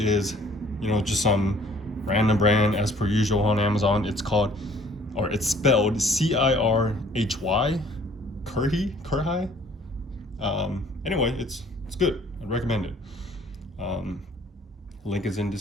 you know, just some random brand as per usual on Amazon. It's called, or it's spelled Cirhy, Cirhy. Anyway, it's good. I'd recommend it. Link is in the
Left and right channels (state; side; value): normal; both; correlation 0.56